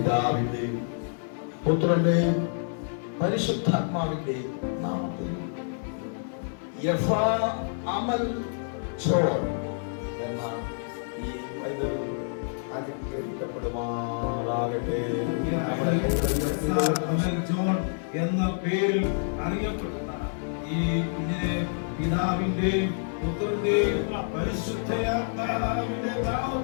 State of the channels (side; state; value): right; silent; 59 dB below the other